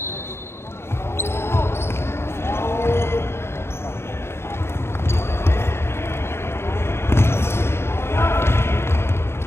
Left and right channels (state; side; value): late; right; 0.12 ms